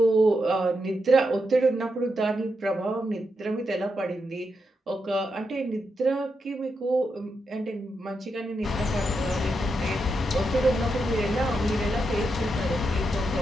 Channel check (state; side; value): normal; both; correlation 0.84